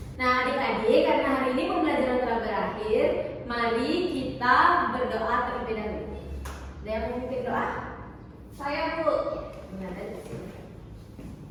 Nah, adik-adik, karena hari ini pembelajaran telah berakhir, mari kita berdoa terlebih dahulu. Ada yang memimpin doa? Saya Bu.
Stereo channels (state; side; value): identical; both; correlation 1.00